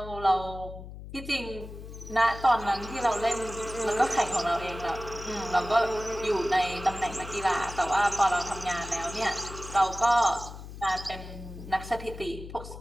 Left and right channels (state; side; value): noise; left; hum, 12 dB below the sound